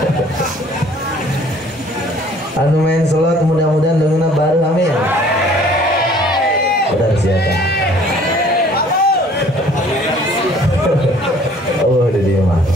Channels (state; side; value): normal; both; correlation 0.55